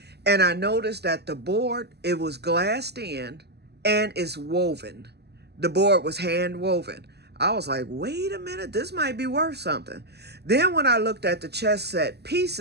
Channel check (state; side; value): late; left; 0.48 ms